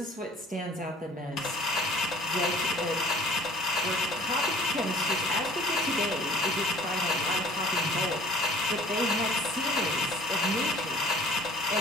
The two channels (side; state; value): both; normal; correlation 0.50